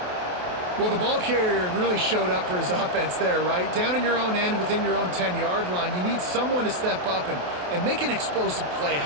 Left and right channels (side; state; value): left; late; 28 ms